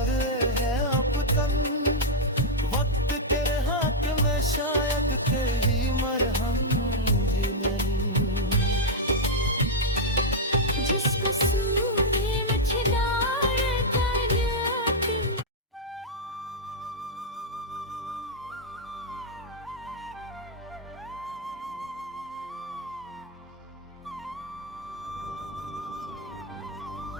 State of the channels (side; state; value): both; normal; correlation -0.03